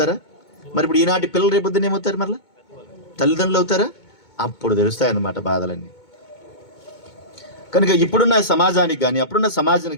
మరి ఇప్పుడు ఈనాటి పిల్లలు రేపొద్దున ఏమవుతారు? మరలా తల్లిదండ్రులు అవుతారా? అప్పుడు తెలుస్తాయి అన్నమాట బాధలన్నీ. కనుక ఇప్పుడున్న సమాజానికి కానీ అప్పుడున్న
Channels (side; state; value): right; late; 2.2 ms